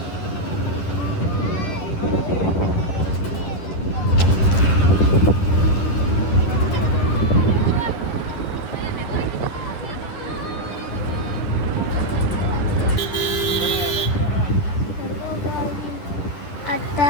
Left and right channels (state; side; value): late; right; 10 ms